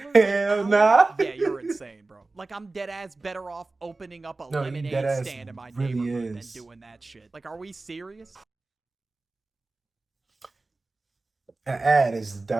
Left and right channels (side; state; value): left; quieter; 3.3 dB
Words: Hell nah. Yeah, you're insane, bro. Like, I'm dead ass better off opening up a lemonade stand in my neighborhood than doing that shit. Like, are we serious? That ad is